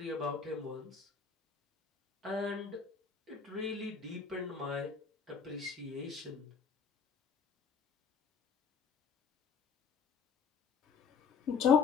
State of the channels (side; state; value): right; quieter; 6.0 dB